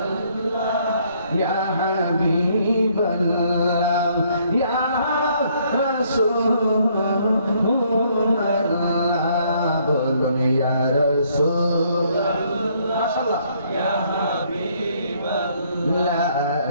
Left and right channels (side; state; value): both; inverted; correlation -0.67